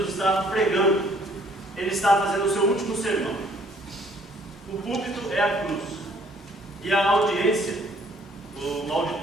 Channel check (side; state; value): both; normal; correlation 0.61